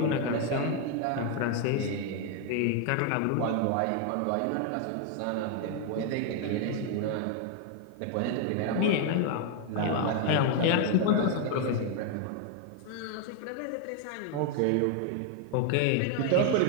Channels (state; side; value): different; both; correlation 0.01